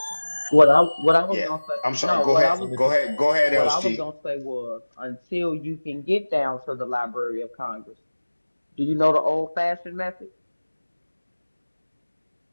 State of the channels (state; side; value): inverted; both; correlation -1.00